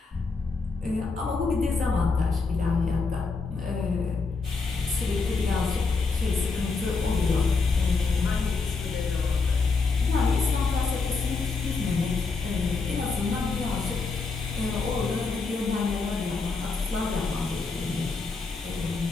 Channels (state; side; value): quieter; right; 4.3 dB